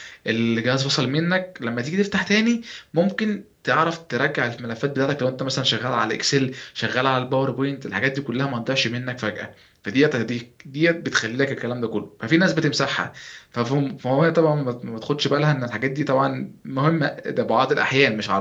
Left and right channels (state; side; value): identical; both; correlation 1.00